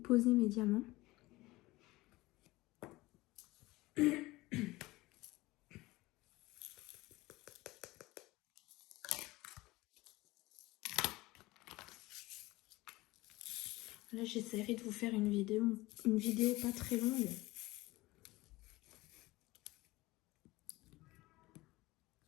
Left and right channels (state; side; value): quieter; right; 20.0 dB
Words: mes diamants. Là, j'essaierai de vous faire une vidéo pas très longue.